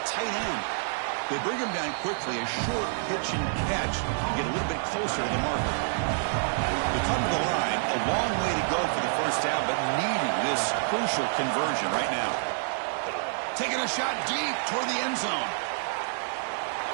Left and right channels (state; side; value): silent; left; digital silence